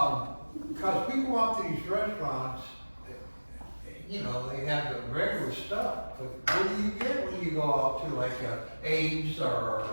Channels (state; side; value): inverted; both; correlation -1.00